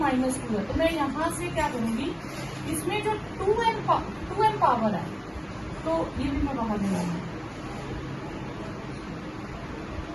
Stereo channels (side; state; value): both; identical; correlation 1.00